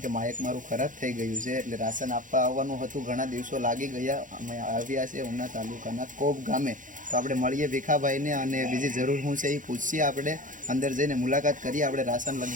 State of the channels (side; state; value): left; late; 0.38 ms